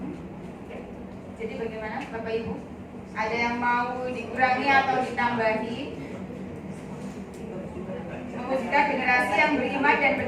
Jadi bagaimana Bapak Ibu? Ada yang mau dikurangi atau ditambahi? Mewujudkan generasi yang beriman dan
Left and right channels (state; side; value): identical; both; correlation 1.00